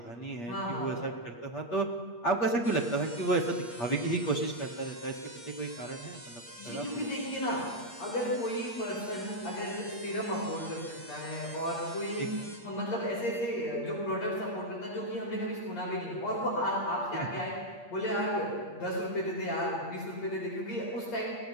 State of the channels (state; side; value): late; right; 8.5 ms